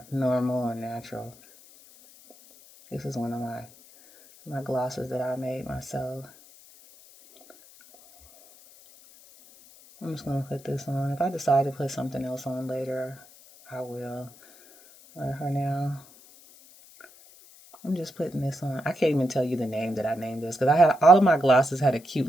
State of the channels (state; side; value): noise; left; hiss, 23 dB below the sound